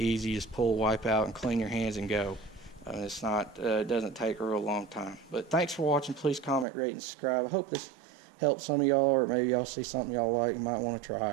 You just pull, wipe out, and clean your hands and go. It's not, it doesn't take a real long time. But thanks for watching. Please comment, rate, and subscribe. I hope this helps some of y'all, or maybe y'all see something y'all like and might want to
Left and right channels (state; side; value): drops out; left; at 6.7 s